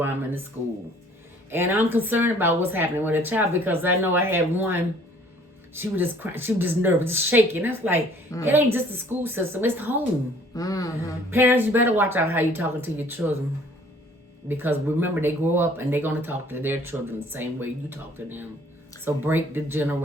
I'm in the school. And I'm concerned about what's happening with a child because I know I had one. She was just crying. She was just nervous, just shaking. That's like, it ain't just the school system. It's home. Parents, you better watch out how you talking to your children. Because remember, they grow up and they're going to talk to their children the same way you talk to them. So break the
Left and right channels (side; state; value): both; normal; correlation 0.56